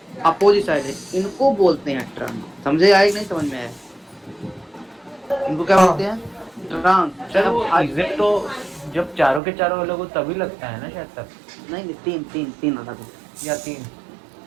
अपोजिट साइड है, इनको बोलते हैं ट्रांस। समझे आए कि नहीं समझ में आया? इनको क्या बोलते हैं? ट्रांस। सर वो इजेड तो जब चारों के चारों अलग हो तभी लगता है ना शायद तक, नहीं, तीन अलग हो। या 3।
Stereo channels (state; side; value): drops out; left; at 9.4 s